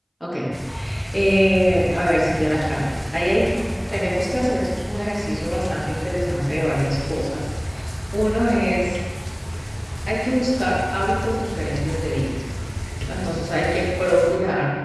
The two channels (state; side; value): identical; both; correlation 1.00